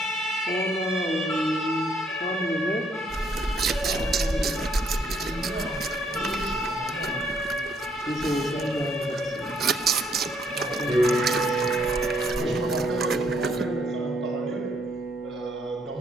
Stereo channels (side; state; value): both; normal; correlation 0.69